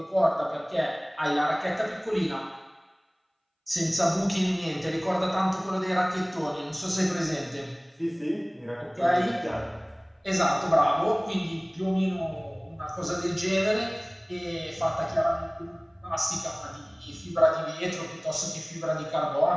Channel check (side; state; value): both; identical; correlation 1.00